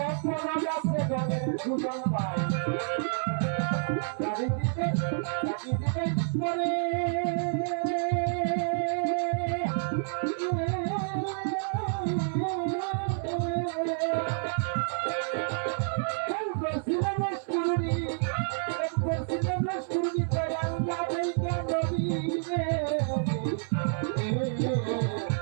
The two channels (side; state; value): left; silent; 59 dB below the other